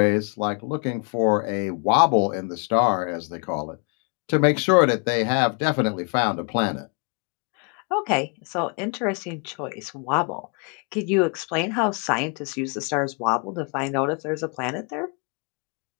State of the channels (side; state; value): right; quieter; 37.0 dB